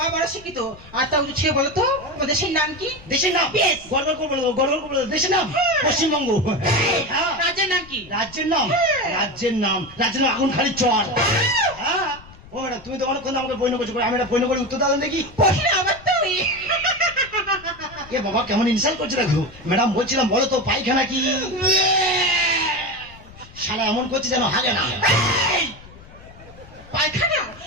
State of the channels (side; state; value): left; noise; rumble, 21 dB below the sound